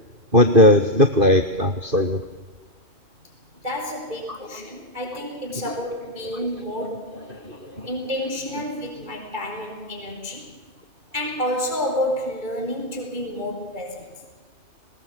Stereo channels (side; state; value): left; late; 2.3 ms